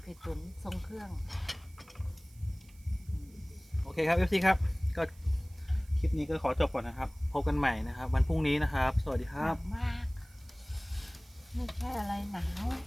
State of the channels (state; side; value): noise; right; hiss, 27 dB below the sound